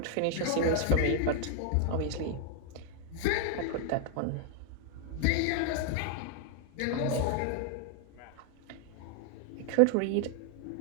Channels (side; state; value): both; different; correlation 0.00